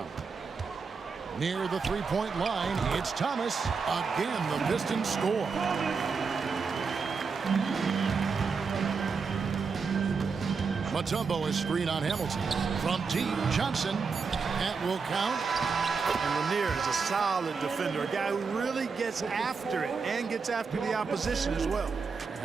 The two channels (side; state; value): left; quieter; 5.1 dB